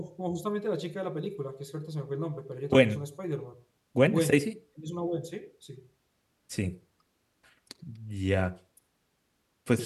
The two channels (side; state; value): both; identical; correlation 1.00